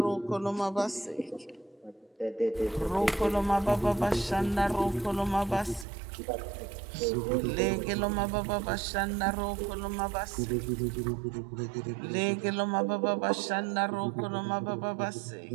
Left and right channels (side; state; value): left; drops out; at 5.9 s